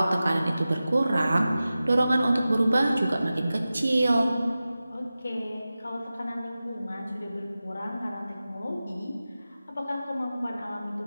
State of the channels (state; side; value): inverted; both; correlation -0.95